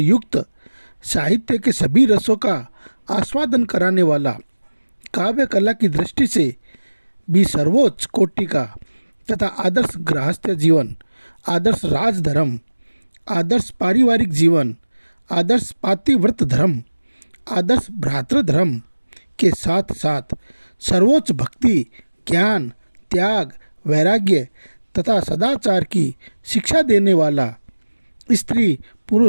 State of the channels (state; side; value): inverted; both; correlation -1.00